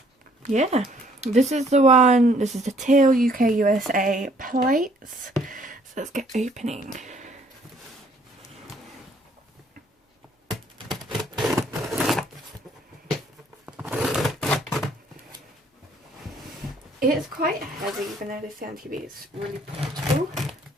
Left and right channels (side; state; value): both; normal; correlation 0.62